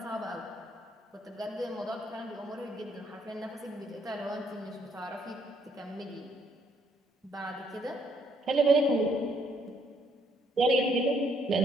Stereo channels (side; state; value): both; normal; correlation 0.69